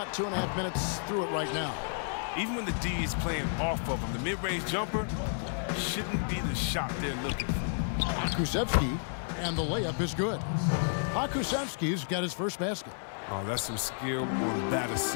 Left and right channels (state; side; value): silent; right; digital silence